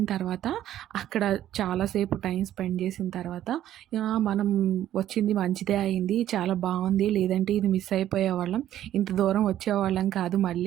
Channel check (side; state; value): left; quieter; 12.1 dB